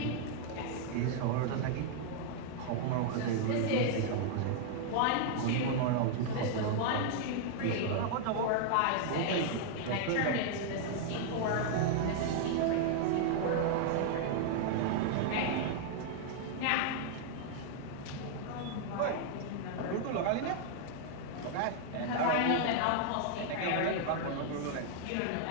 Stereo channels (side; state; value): both; different; correlation 0.00